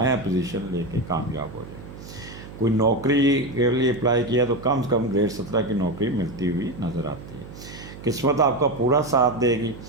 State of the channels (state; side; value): noise; right; hum, 15 dB below the sound